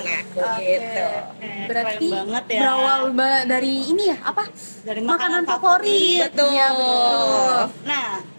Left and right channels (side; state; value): both; inverted; correlation -1.00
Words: aku gitu. Berarti keren banget ya. berawal dari ini ya, apa? Dari Makanan favorit. Betul. Iya, betul. Nah,